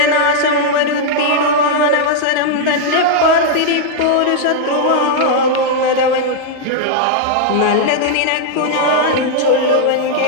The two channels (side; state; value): both; different; correlation -0.01